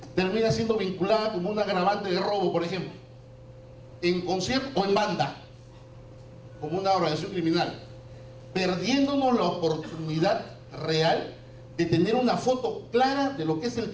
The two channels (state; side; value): identical; both; correlation 1.00